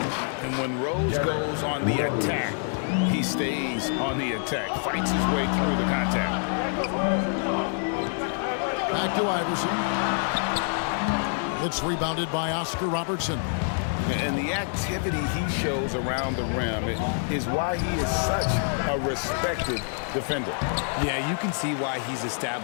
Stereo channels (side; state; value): right; silent; 57 dB below the other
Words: And when Rose goes on the attack, he stays on the attack, fights his way through the contact. Back to Iverson. It's rebounded by Oscar Robertson. And the activity he shows around the rim is why he is such a respected defender. Yeah, you can see why he's